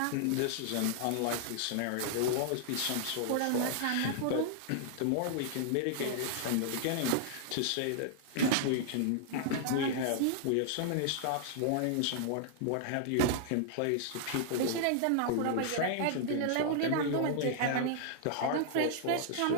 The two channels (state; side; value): different; both; correlation -0.01